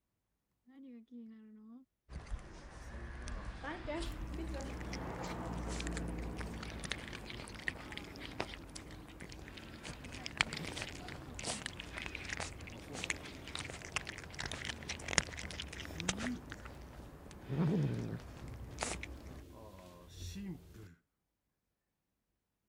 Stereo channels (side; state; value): both; identical; correlation 1.00